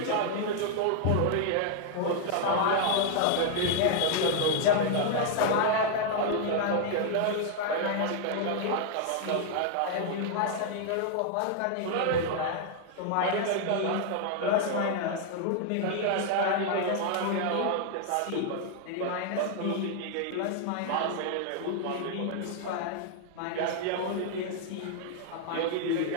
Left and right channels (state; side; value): different; both; correlation 0.00